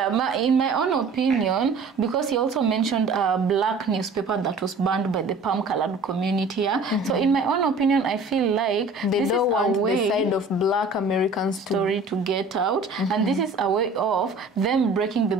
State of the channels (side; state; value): left; quieter; 3.5 dB